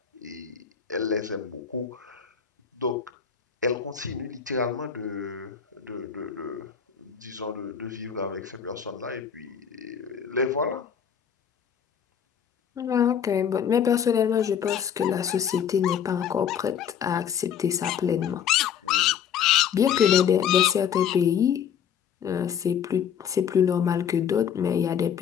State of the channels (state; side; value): quieter; right; 8.2 dB